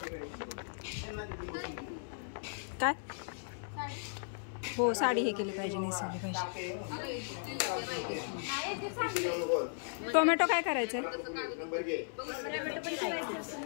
काय हो, साडी हे केली पाहिजे, नेसवली पाहिजे. टोमॅटो काय करायचं आहे?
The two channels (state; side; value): silent; right; 54 dB below the other